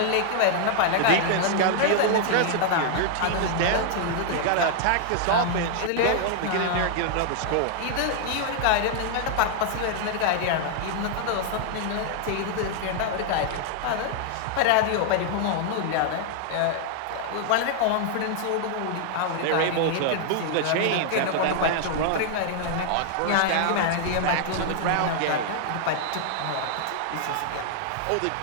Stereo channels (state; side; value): different; both; correlation 0.00